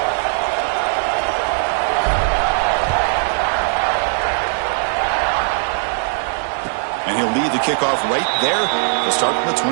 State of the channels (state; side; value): silent; left; digital silence